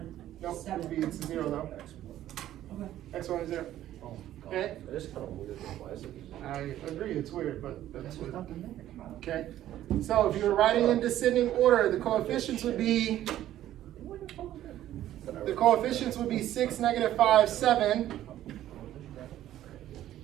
Nope, 7. it'd be 0 though. Okay. X1 is 0. Okay? It is kind of weird. Why is it? I agree, it's weird, but that's what. Okay, so if you were writing in descending order, the coefficients would be 6, -5, 7.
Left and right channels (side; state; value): left; quieter; 12.8 dB